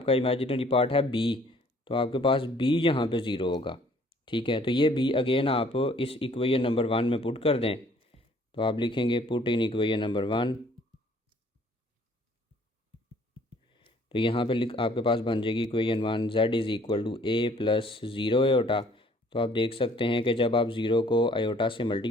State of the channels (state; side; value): normal; both; correlation 0.58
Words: इमेजिनरी पार्ट है b, तो आपके पास b यहाँ पे 0 होगा। ठीक है, तो ये b अगेन आप इस इक्वेशन नंबर 1 में पुट कर दें। तो आप लिखेंगे पुट इन इक्वेशन नंबर 1, तो यहाँ पे आपके पास बन जाएगी equation 1 z is equal to a plus 0 iota. तो आप देख सकते हैं कि जब आप 0 को आयोटा से